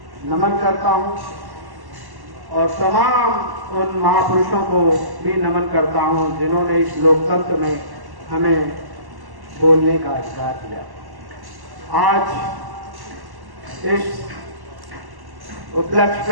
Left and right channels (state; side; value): late; left; 1.1 ms